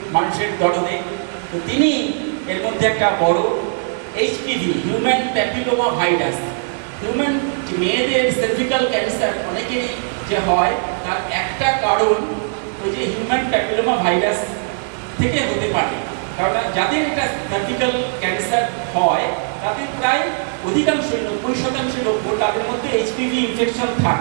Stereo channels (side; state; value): left; silent; digital silence